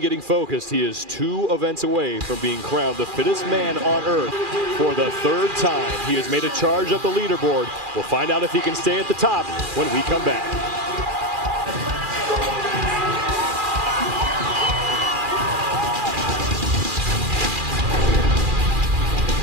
focused. He is 2 events away from being crowned the fittest man on earth for the 3rd time. He has made a charge up the leaderboard. We'll find out if he can stay at the top when we come back.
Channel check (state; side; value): late; left; 2.4 ms